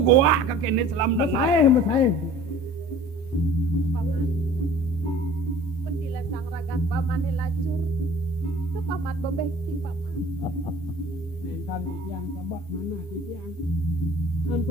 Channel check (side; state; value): both; normal; correlation 0.46